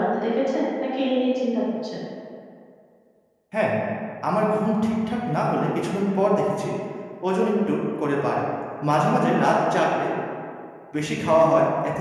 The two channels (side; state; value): both; identical; correlation 1.00